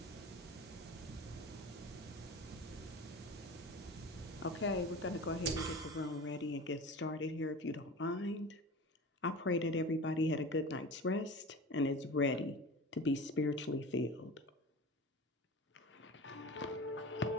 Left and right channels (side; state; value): both; normal; correlation 0.35